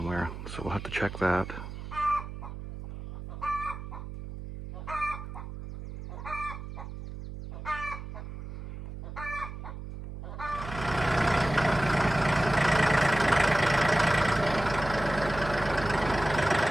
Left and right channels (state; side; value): noise; right; hum, 10 dB below the sound